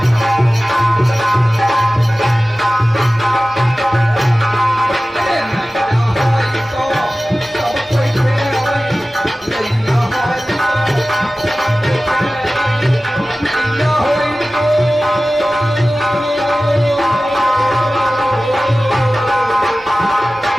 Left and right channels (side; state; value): both; normal; correlation 0.96